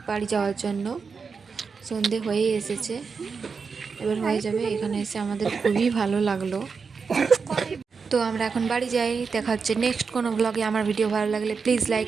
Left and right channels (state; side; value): quieter; left; 5.3 dB